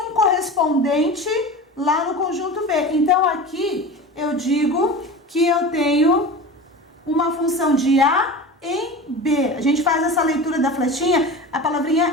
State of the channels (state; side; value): normal; both; correlation 0.32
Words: um correspondente lá no conjunto B. Então, aqui eu digo que eu tenho uma função de A em B. A gente faz essa leitura da flechinha, a